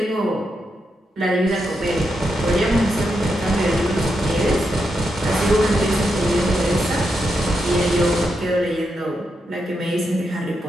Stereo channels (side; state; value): both; normal; correlation 0.84